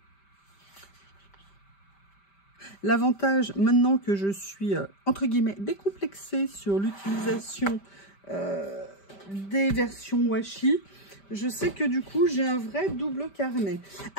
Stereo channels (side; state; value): right; late; 5.1 ms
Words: L'avantage, maintenant que je suis, entre guillemets, décomplexée sur l'utilisation des versions washi, je sais que du coup, j'ai un vrai double carnet.